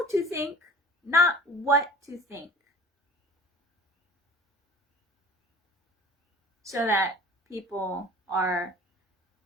to think, not what to think. So that people are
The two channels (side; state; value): both; normal; correlation 0.43